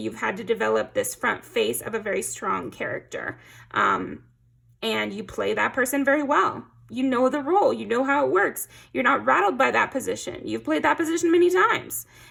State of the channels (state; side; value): identical; both; correlation 1.00